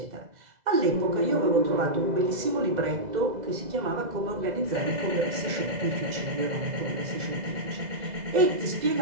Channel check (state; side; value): late; left; 2.0 ms